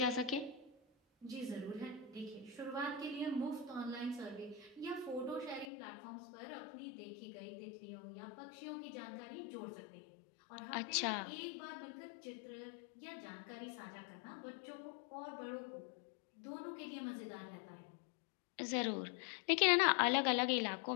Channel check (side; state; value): right; drops out; at 5.7 s